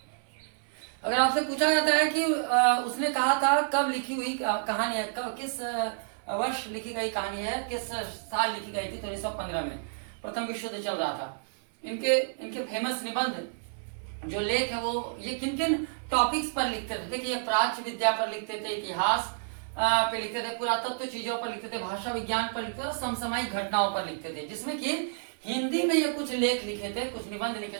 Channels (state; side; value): silent; left; 58 dB below the other